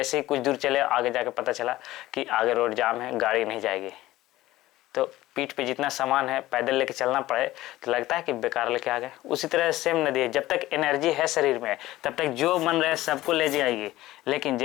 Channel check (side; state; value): right; quieter; 16.5 dB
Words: ही कुछ दूर चले आगे जाके पता चला कि आगे रोड जाम है, गाड़ी नहीं जाएगी, तो पीठ पे जितना सामान है पैदल लेके चलना पड़े तो लगता है कि बेकार लेके आ गए। उसी तरह सेम नदी है, जब तक एनर्जी है शरीर में तब तक जो मन रहे सबको ले जाएगी, लेकिन